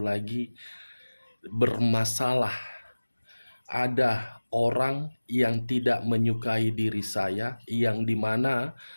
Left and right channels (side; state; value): both; inverted; correlation -1.00